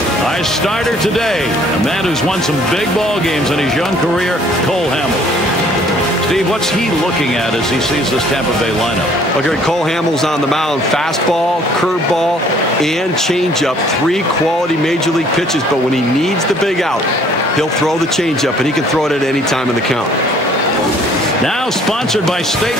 Our starter today, a man who's won some big ball games in his young career, Cole Hamels. Steve, what's he looking at as he sees this Tampa Bay lineup? Well, Gary, Cole Hamels on the mound. Fastball, curveball, and changeup. 3 quality Major League pitches, but when he needs the big out, he'll throw the changeup, and he can throw it at any time in the count. Now sponsored by State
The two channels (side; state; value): both; normal; correlation 0.58